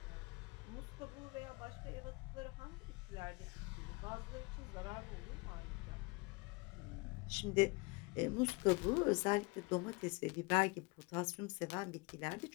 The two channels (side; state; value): right; quieter; 26.9 dB